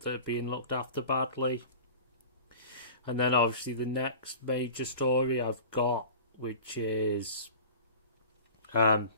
are being looked after badly. And then obviously the next major story I've got, which is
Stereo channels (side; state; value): both; inverted; correlation -0.39